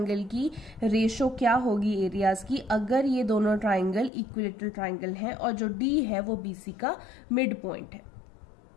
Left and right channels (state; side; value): drops out; right; at 4.1 s